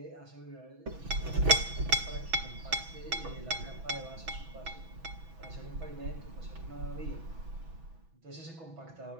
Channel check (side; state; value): left; late; 6.1 ms